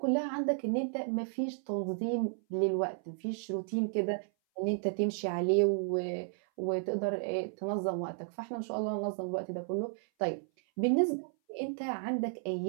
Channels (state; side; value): silent; left; 56 dB below the other